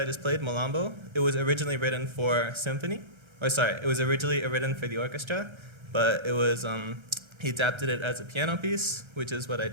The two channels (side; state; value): left; late; 1.3 ms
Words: just played, Malambo, it was originally written for symphony. It was originally written for the orchestra, but he adapted it as a piano piece, which is what I